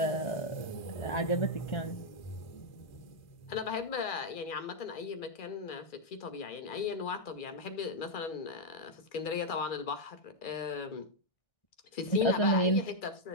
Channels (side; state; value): right; late; 1.6 ms